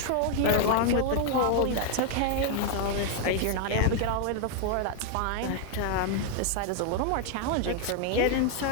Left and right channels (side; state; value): both; different; correlation 0.00